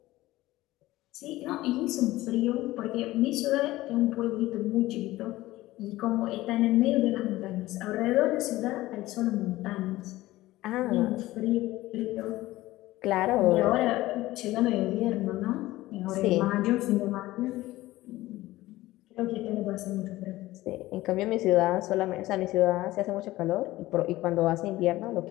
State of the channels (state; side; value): quieter; right; 17.3 dB